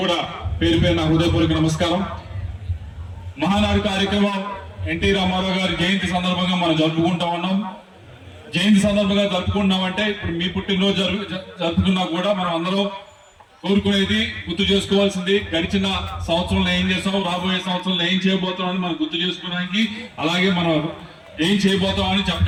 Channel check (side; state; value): both; identical; correlation 1.00